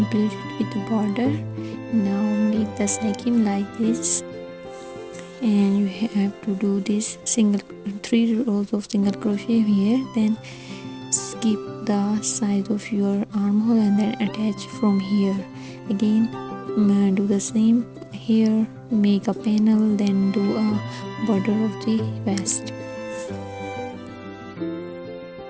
with the border. Now make the second like this, and you have to do this single 3 rows of single crochet here, then skip the size of your armhole and then attach from here. Again, do the same here, make a panel, then do a border of the vest.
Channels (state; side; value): identical; both; correlation 1.00